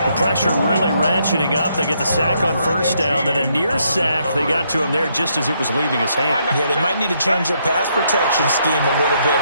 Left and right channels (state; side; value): inverted; both; correlation -0.74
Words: The pressure really ratcheting up. They get the sack on 1st down, then a near sack. They got to him there just as it was leaving his hand. Yeah, they might need to change their pass protection scheme a little bit.